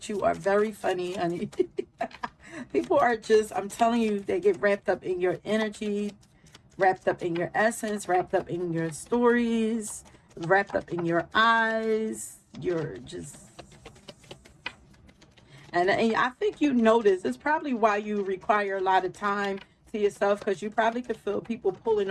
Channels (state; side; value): identical; both; correlation 1.00